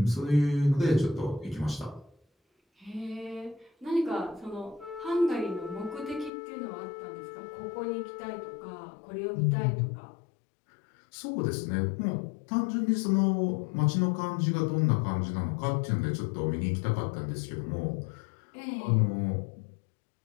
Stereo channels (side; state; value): right; drops out; at 6.3 s